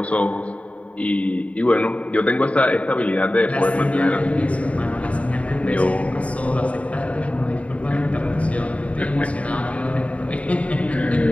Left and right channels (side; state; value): right; late; 0.066 ms